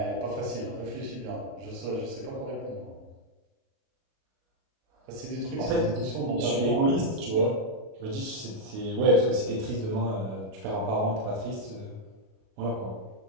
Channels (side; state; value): left; late; 37 ms